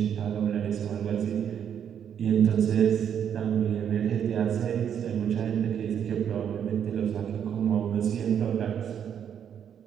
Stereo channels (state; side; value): quieter; left; 8.6 dB